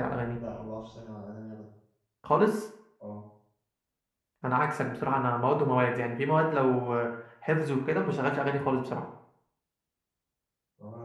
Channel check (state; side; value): identical; both; correlation 1.00